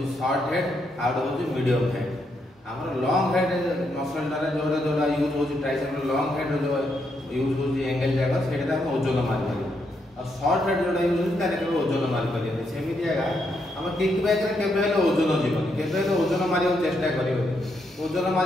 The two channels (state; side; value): normal; both; correlation 0.79